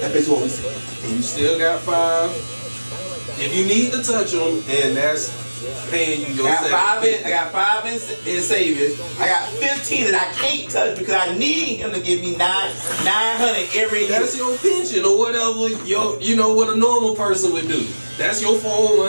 basically what we saying. And you still got 5. If you need to touch them, and that's paying you your I got 5 in savings. I got 15 that I can't touch because I need him to give me 900 every year. That's your pension or whatever. You know what a normal person would do. That's your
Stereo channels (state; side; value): inverted; both; correlation -1.00